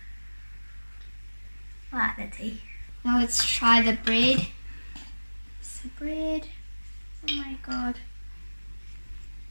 I like the tea. Now let's try the bread. It's the bread. Oh my god.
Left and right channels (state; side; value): inverted; both; correlation -1.00